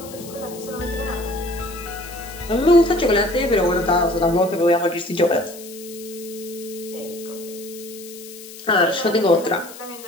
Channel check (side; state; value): left; noise; hiss, 16 dB below the sound